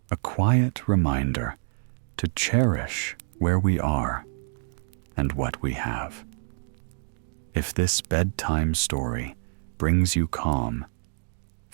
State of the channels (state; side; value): silent; left; digital silence